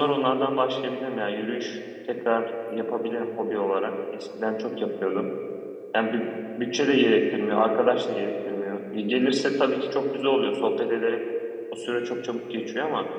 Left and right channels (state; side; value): identical; both; correlation 1.00